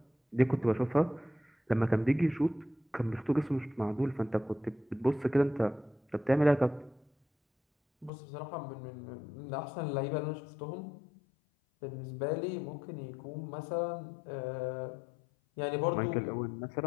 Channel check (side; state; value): right; drops out; at 8.1 s